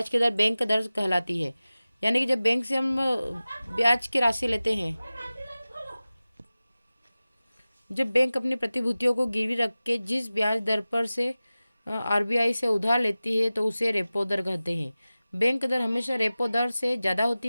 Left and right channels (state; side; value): inverted; both; correlation -0.96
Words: की दर बैंक दर कहलाती है। यानी कि जब बैंक से हम ब्याज की राशि लेते हैं, जब बैंक अपनी प्रतिभूतियों को गिरवी रख के जिस ब्याज दर पर से आरबीआई से उधार लेती है तो उसे रेपो दर कहते हैं। बैंक दर हमेशा रेपो दर से ज़्यादा